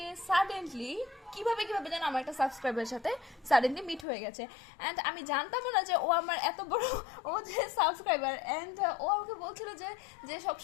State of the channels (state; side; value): drops out; right; at 4.0 s